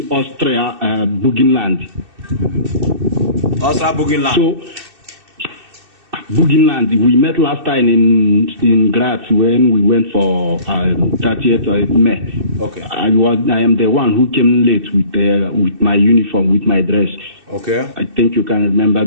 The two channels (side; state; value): left; late; 2.6 ms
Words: Austria Burgenland. Austria Burgenland. So, Burgenland. We met last time in Graz when we went for 30th of May. Okay. I am the one who came late with my uniform, with my dress. Okay. I think you can remember